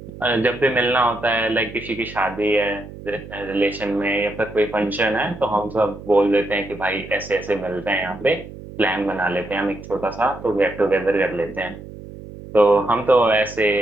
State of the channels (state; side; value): noise; right; hum, 14 dB below the sound